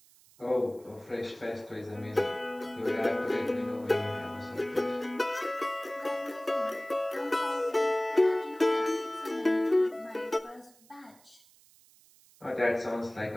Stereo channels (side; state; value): right; noise; hiss, 27 dB below the sound